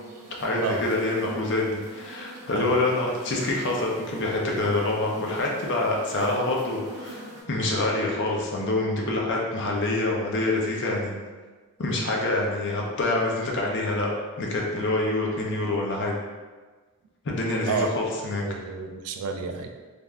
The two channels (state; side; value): normal; both; correlation 0.15